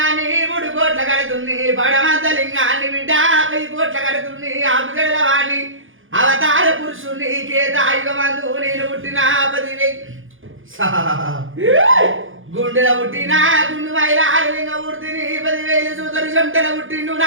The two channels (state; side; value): late; left; 0.58 ms